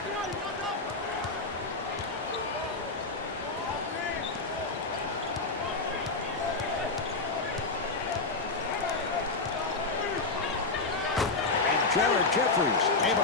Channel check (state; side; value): quieter; right; 3.6 dB